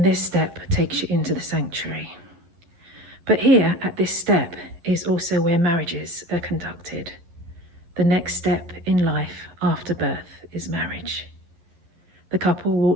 this step takes you into the sanctuary. But here at this step is also where marriages are conducted. The next step in life after birth is marriage. The couple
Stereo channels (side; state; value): left; late; 11 ms